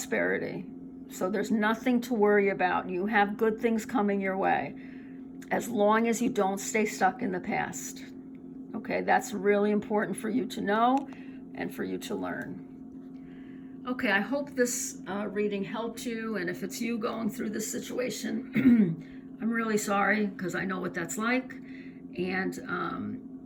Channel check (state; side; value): identical; both; correlation 1.00